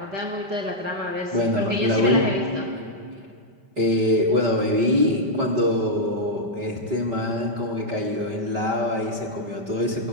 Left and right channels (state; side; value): late; left; 5.1 ms